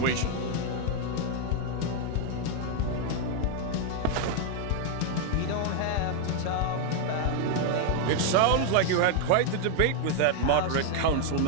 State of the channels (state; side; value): different; both; correlation 0.00